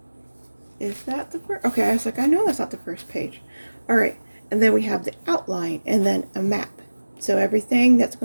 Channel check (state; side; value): inverted; both; correlation -1.00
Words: Is that the first? Okay, I was like, I know that's not the first page. All right, and then we have the outline and then a map. So everything that's